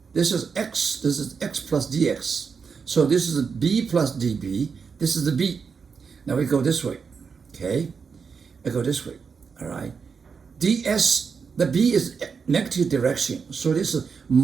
This is x. This is x plus dx. So this is b plus db. This is the b. Now we go this way. Okay, I go this way. All right. ds, the b is negative direction. So this is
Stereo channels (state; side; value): quieter; left; 5.7 dB